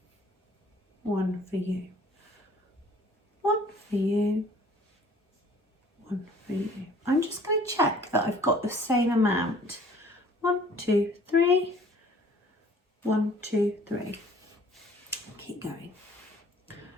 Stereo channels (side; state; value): both; normal; correlation 0.53